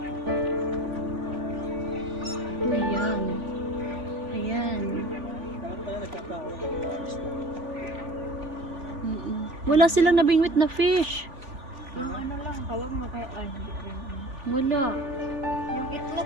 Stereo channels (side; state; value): left; late; 3.5 ms